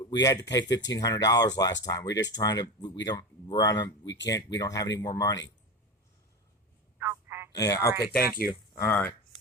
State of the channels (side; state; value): both; normal; correlation 0.24